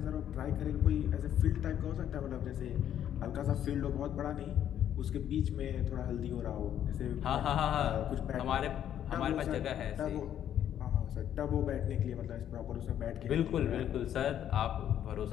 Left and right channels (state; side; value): quieter; right; 10.3 dB